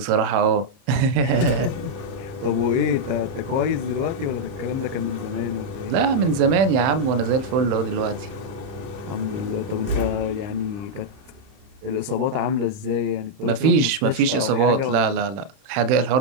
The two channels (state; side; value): late; left; 31 ms